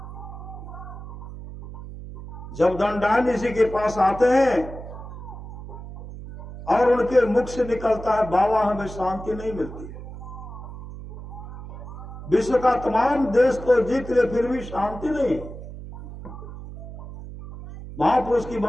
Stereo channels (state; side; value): noise; right; hum, 12 dB below the sound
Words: जब दंडान ऋषि के पास आते हैं और उनके मुख से निकलता है, बाबा हमें शांति नहीं मिलती है। विश्व का तमाम देश को जीत ले फिर भी शांति नहीं। महापुरुष की